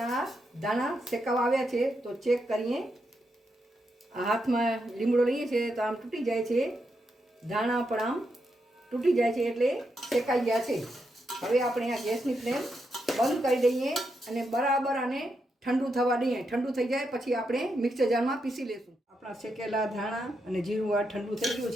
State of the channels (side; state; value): both; normal; correlation 0.83